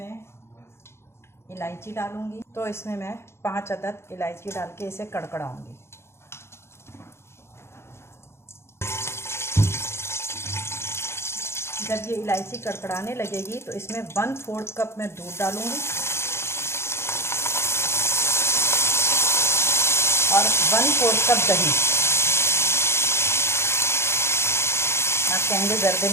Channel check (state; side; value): late; right; 0.12 ms